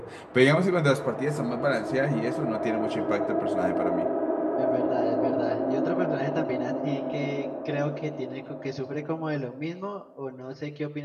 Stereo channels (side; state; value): both; identical; correlation 1.00